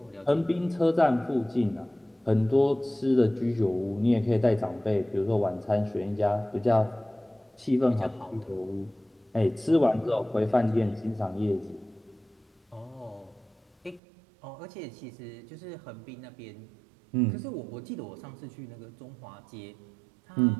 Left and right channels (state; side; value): drops out; left; at 14.0 s